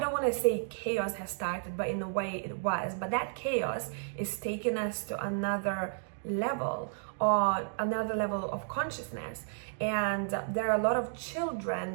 want to say chaos has started, but in a way it was. But that chaos is taking us to another level, or another level of consciousness. And there are a lot of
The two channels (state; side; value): silent; left; digital silence